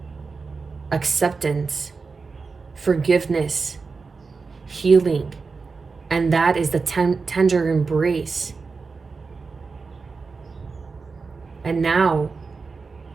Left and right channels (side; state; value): left; quieter; 4.5 dB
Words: acceptance, forgiveness, healing. And that is the tender embrace. And now